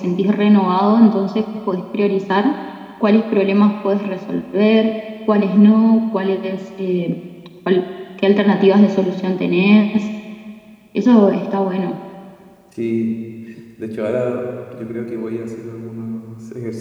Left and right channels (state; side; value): identical; both; correlation 1.00